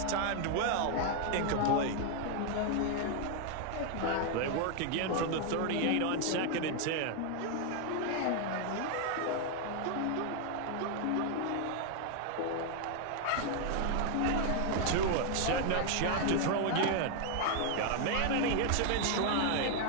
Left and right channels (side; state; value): both; different; correlation 0.00